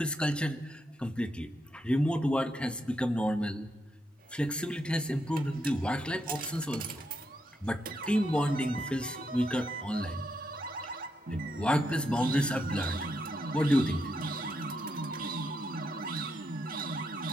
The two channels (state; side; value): normal; both; correlation 0.81